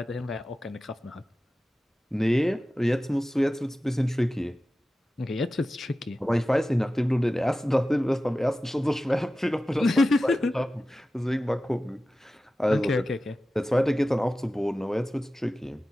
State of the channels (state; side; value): normal; both; correlation 0.95